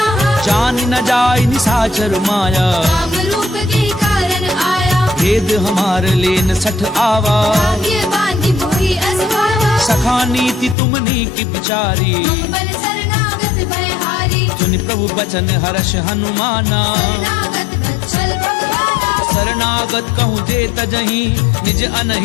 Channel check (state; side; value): drops out; right; at 10.8 s